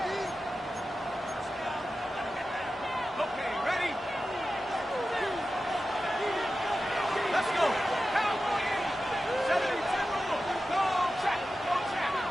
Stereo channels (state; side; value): normal; both; correlation 0.93